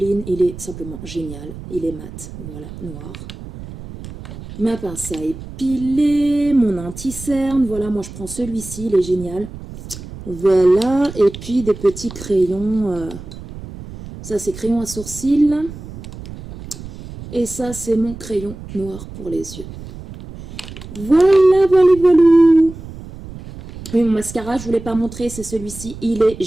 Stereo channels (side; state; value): right; noise; rumble, 13 dB below the sound